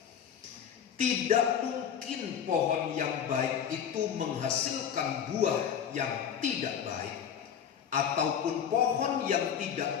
Tidak mungkin pohon yang baik itu menghasilkan buah yang tidak baik, ataupun pohon yang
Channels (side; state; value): right; quieter; 8.3 dB